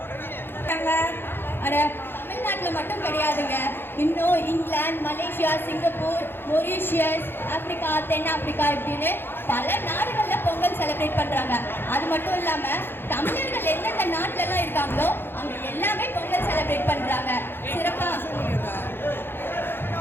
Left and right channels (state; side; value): late; right; 0.10 ms